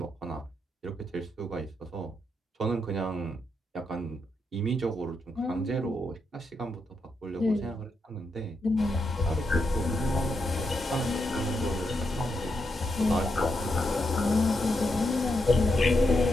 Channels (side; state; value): both; normal; correlation 0.83